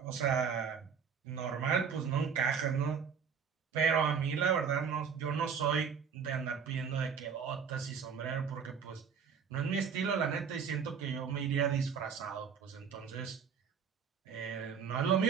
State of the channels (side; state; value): left; quieter; 6.7 dB